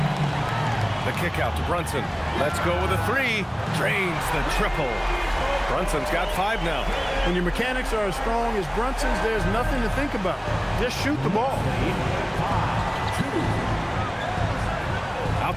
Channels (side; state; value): both; identical; correlation 1.00